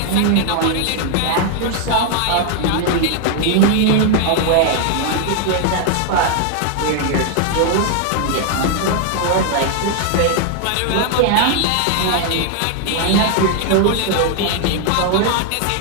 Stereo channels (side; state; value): both; different; correlation 0.00